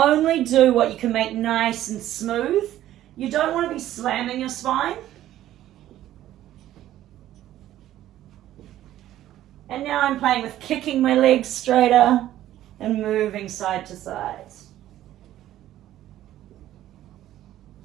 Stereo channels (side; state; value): left; quieter; 13.2 dB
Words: do what you can make nice and smooth. You don't want to be slamming your spine. And now I'm playing with kicking my legs straighter and moving side to side.